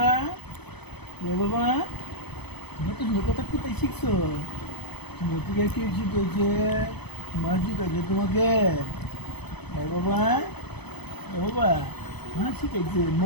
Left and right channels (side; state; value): right; late; 0.98 ms